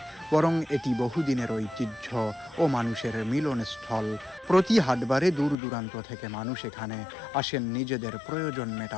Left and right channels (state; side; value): drops out; right; at 5.6 s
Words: বরং এটি বহুদিনের ঐতিহ্য ও মানুষের মিলনস্থল। প্রতি হাটবারে দূর দূরান্ত থেকে মানুষ এখানে আসেন নিজেদের প্রয়োজন